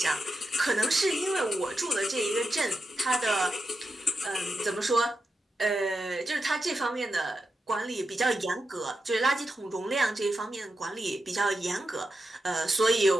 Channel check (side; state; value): both; normal; correlation 0.88